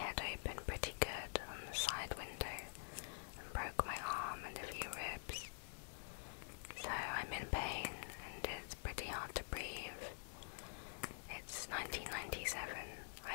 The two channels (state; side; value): silent; right; digital silence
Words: open pretty good on the side window and broke my arm and a few ribs. So I'm in pain and it's pretty hard to breathe. It's 1997.